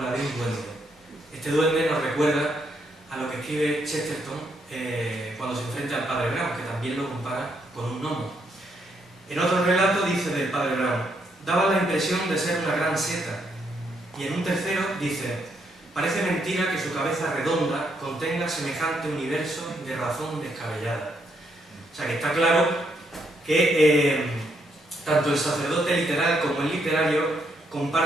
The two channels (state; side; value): normal; both; correlation 0.75